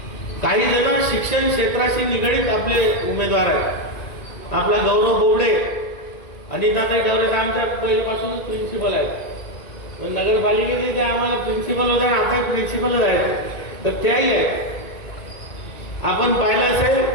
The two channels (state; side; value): late; right; 2.3 ms